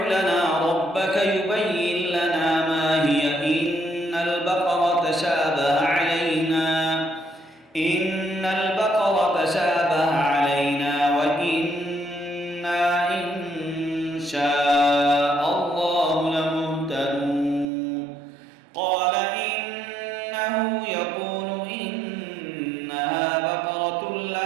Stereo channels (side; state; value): left; drops out; at 17.7 s